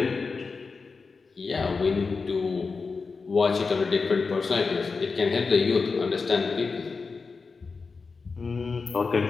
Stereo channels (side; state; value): right; quieter; 4.6 dB